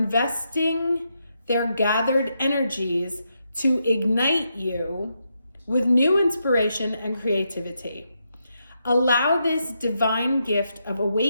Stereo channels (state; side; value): inverted; both; correlation -0.82